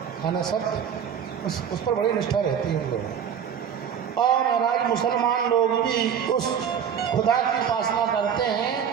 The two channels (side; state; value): left; quieter; 8.1 dB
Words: है ना, सत्य, उस पर बड़ी निष्ठा रहती है उन लोगों। और महाराज मुसलमान लोग भी उस खुदा की उपासना करते